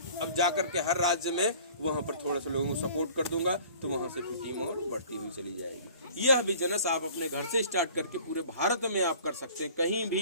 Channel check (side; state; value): both; inverted; correlation -0.48